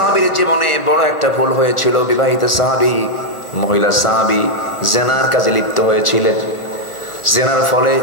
জীবনে বড় একটা ভুল হয়েছিল। বিবাহিত সাহাবী, মহিলা সাহাবী জেনার কাজে লিপ্ত হয়েছিলেন। জেনার ফলে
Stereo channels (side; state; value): right; late; 1.4 ms